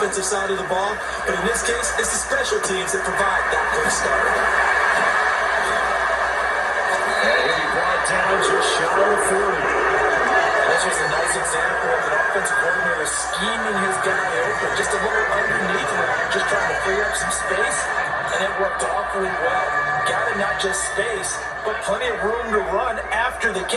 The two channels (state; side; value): identical; both; correlation 1.00